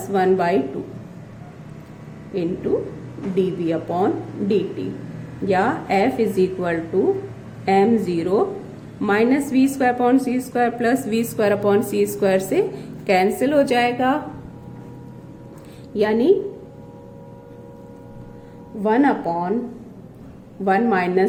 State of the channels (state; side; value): identical; both; correlation 1.00